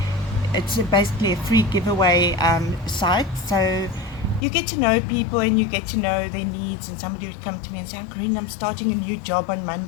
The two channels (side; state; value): right; drops out; at 4.5 s